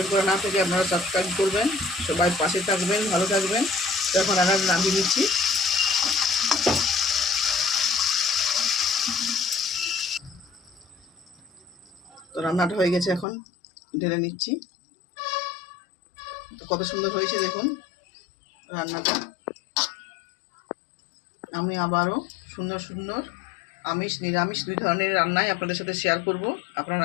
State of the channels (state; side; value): drops out; right; at 13.2 s